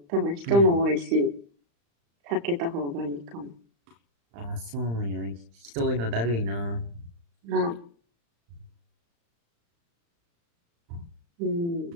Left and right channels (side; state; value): left; late; 35 ms